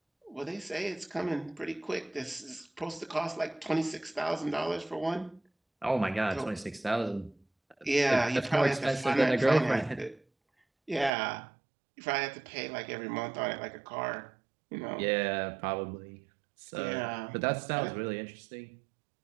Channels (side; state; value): left; drops out; at 11.1 s